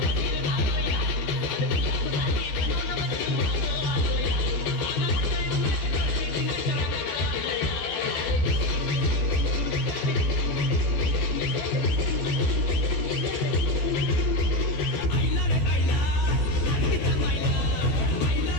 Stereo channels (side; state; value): right; late; 14 ms